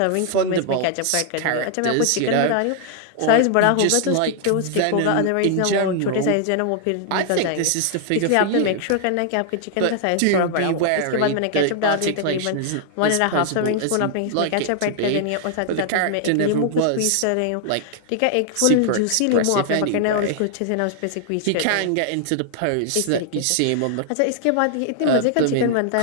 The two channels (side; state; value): both; different; correlation 0.00